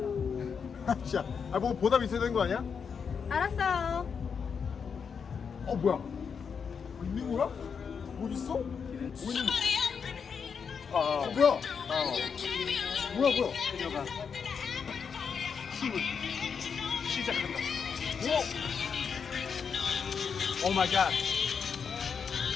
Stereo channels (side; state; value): right; quieter; 6.3 dB